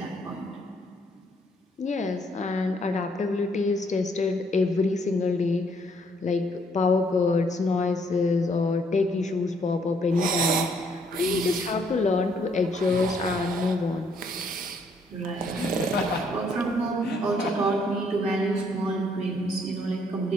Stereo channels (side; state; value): both; normal; correlation 0.68